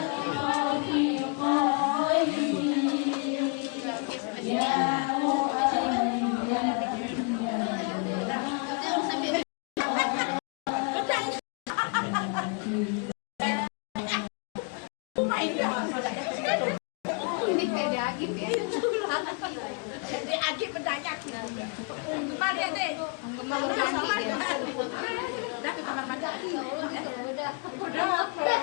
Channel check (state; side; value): quieter; right; 35.0 dB